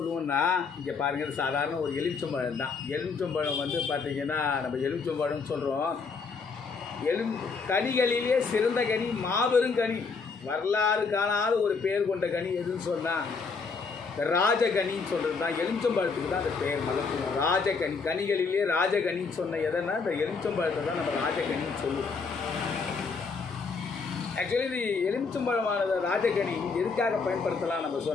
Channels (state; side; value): quieter; right; 4.9 dB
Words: இங்கே பாருங்கள், சாதாரண ஒரு எலுமிச்சம்பழம் தான். எலுமிச்சம்பழம் வந்து பார்த்திங்கன்னா நம்ம எலுமிச்சம்பழம்னு சொல்கிறோம். கனிகளிலே சிறந்த கனி, மாபெரும் கனி, வரலாறு காணாத ஒரு பேர் கொண்ட கனி எதுன்னு சொன்னால் ராஜகனின்னு சொல்கிறது தான். எலுமிச்சம்பழத்துக்கு தான் அந்த பேர் மகத்துவம். ராஜகனி, கனிகளிலே ராஜகனின்னு சொன்ன எதனா இந்த எலுமிச்சம்பழத்தை தான் நம்ம ராஜகனின்னு சொல்லுவோம். ஆக்சுவலி இது எலுமிச்சம்பழமானது ராஜகனி எதுக்காக பயன்படுத்தலாம் நம்ம